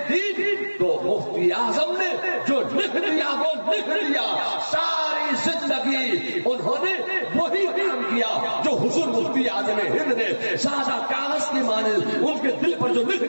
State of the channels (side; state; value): both; inverted; correlation -1.00